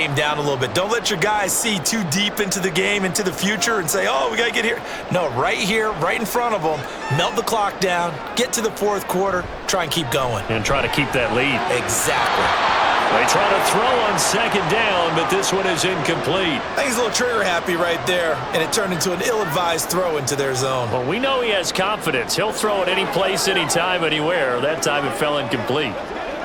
down a little bit. Don't let your guys see too deep into the game, into the future, and say, oh, we got to get here. No, right here, right in front of them, melt the clock down, get to the fourth quarter, try and keep going. And try to keep that lead. Exactly. They try to throw on second down, but this one is incomplete. I think he's a little trigger happy right there, and it turned into an ill-advised throw into their zone. Well, we know he has confidence. He'll throw it any place, anytime, anywhere. That time it fell incomplete.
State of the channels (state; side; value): identical; both; correlation 1.00